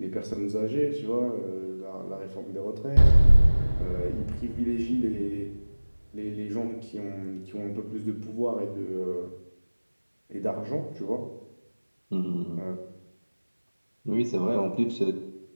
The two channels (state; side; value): inverted; both; correlation -1.00